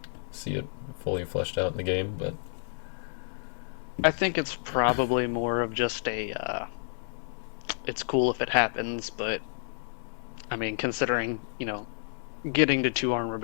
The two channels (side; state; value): right; silent; 58 dB below the other